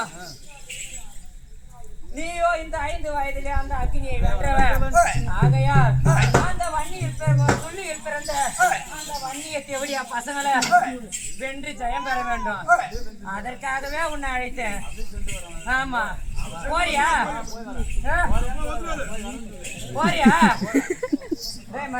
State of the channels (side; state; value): both; identical; correlation 1.00